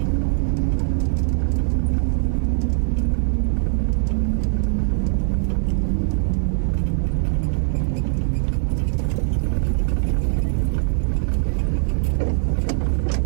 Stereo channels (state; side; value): silent; left; digital silence